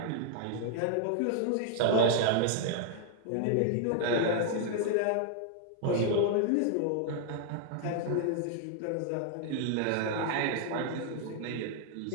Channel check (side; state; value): both; different; correlation 0.00